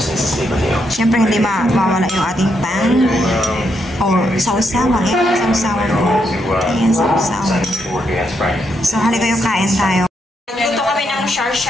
Siyempre, hindi mawala yung ating pan. Or sausawan. Ayan, sausawan. Ayan, sausawan. So, halika yung kain tayo. Nagluto kami ng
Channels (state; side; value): normal; both; correlation 0.79